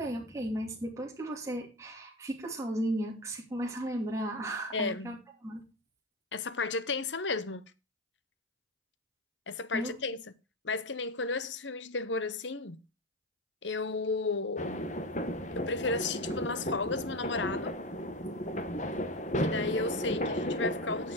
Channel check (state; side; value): normal; both; correlation 0.19